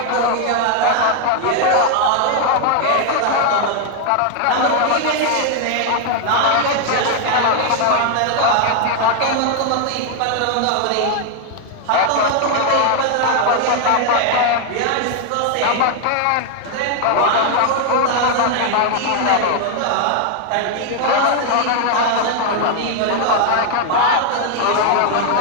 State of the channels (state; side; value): different; both; correlation 0.00